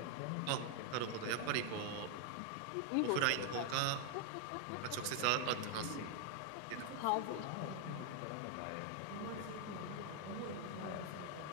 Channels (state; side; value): different; both; correlation 0.00